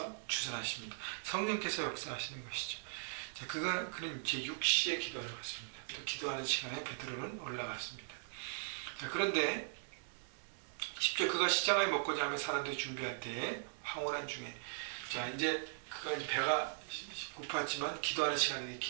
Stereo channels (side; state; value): left; silent; digital silence